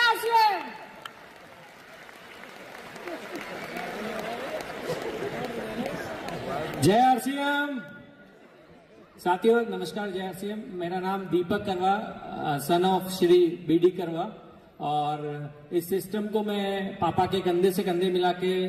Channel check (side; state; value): both; identical; correlation 1.00